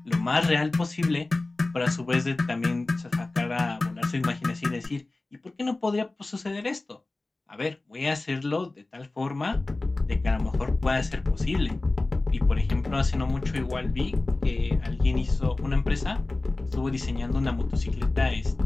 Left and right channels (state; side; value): quieter; right; 3.1 dB